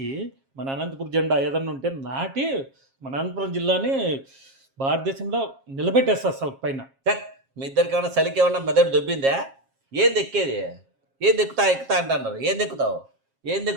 మన అనంతపురం జెండా ఏదన్నా ఉంటే నాటి మన అనంతపురం జిల్లాని భారతదేశంలో నిలబెట్టేస్తా అసలు పైన. మీ ఇద్దరికి ఏమన్నా చలికి ఏమన్నా మెదడు దొబ్బిందా? ఏం దెక్కేది? ఏం ఎక్కుతా అంటున్నారు. ఏం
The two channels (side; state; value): left; late; 7.4 ms